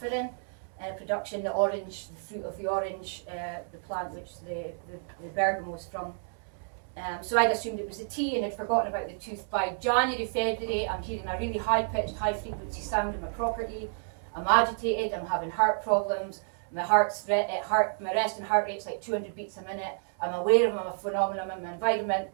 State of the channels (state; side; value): silent; left; digital silence